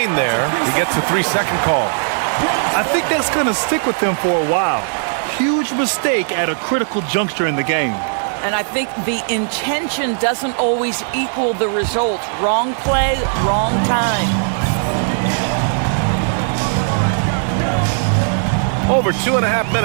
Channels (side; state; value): left; silent; digital silence